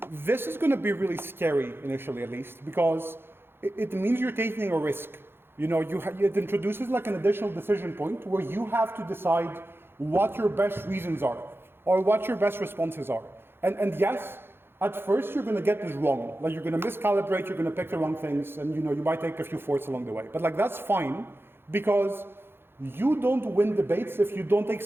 this is going to be really scary initially, at least, because it means you're taking a risk. It introduces an additional decision point where you have to decide what your best reasons are or what your best responses are. And yes, At first, you're going to get this wrong. Like, you're going to miscalibrate, you're going to pick the wrong things, and you might take a few fourths along the way. But like, that's fine, because you don't win debates if you don't take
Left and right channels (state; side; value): late; left; 0.11 ms